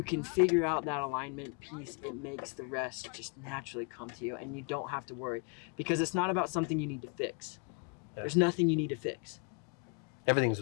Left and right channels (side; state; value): right; quieter; 36.6 dB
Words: can figure out that alignment piece, it makes the rest just naturally come to you and you don't have to worry because it's not about something you need to fix. Yeah. There's nothing you need to fix. Everything's